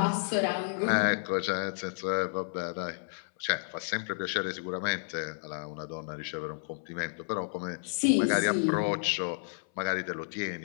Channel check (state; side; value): silent; right; 57 dB below the other